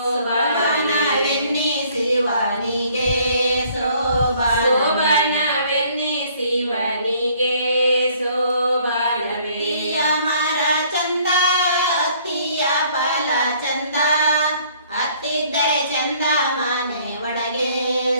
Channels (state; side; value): inverted; both; correlation -0.60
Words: ಶೋಭನವೆನ್ನಿಸಿವನಿಗೆ ಶೋಭನವೆಯ ಮರ ಚಂದ ಅತ್ತಿಯ ಫಲ ಚಂದ ಹತ್ತಿದ್ದರೆ ಚಂದ ಮನೆ ಒಳಗೆ